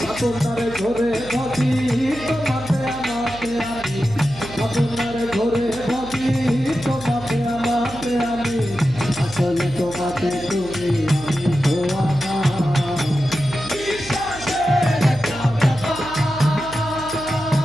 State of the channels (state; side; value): noise; right; hum, 16 dB below the sound